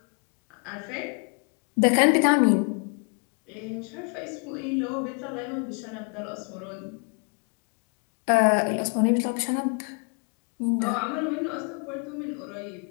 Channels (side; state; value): right; quieter; 38.9 dB